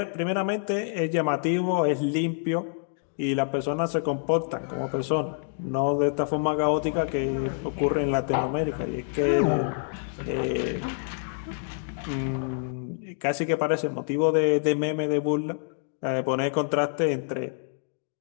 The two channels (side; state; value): right; silent; digital silence